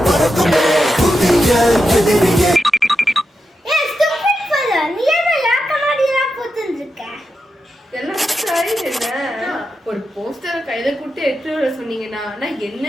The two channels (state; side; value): normal; both; correlation 0.88